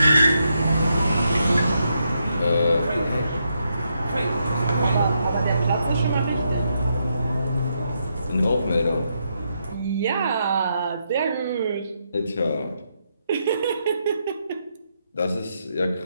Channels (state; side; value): inverted; both; correlation -0.81